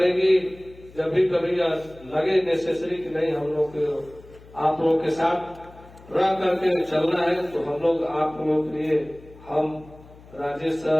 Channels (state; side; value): noise; left; hum, 22 dB below the sound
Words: जब भी कभी लगे नेसेसरी कि नहीं हम लोग आप लोगों के साथ रह करके चलना है, तो हम लोग आप लोगों के लिए हम राजेश